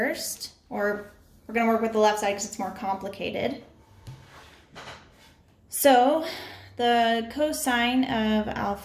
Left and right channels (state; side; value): identical; both; correlation 1.00